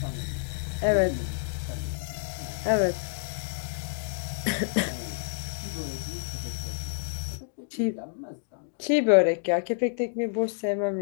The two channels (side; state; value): right; silent; digital silence